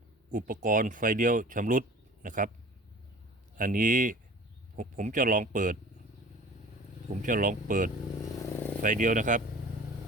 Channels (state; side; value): normal; both; correlation 0.43